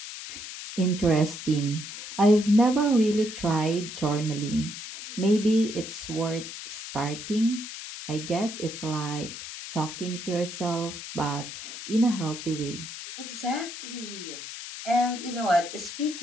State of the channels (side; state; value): left; noise; hiss, 10 dB below the sound